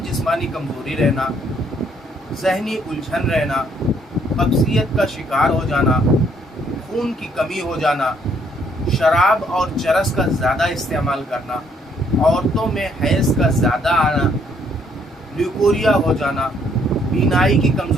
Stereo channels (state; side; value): normal; both; correlation 0.68